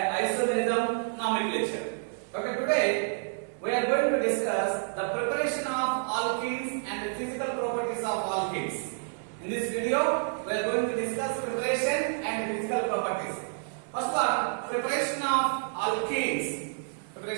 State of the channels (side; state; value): left; silent; digital silence